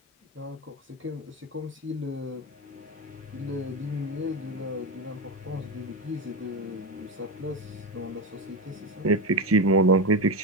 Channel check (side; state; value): both; normal; correlation 0.16